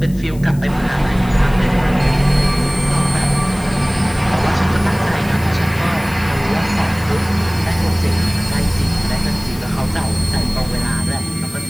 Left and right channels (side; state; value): left; noise; hiss, 21 dB below the sound